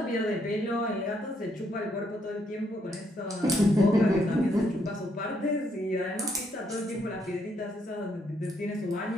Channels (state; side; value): normal; both; correlation 0.73